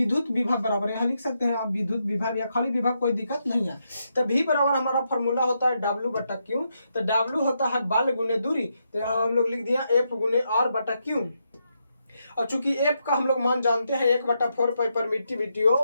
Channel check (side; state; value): both; inverted; correlation -0.82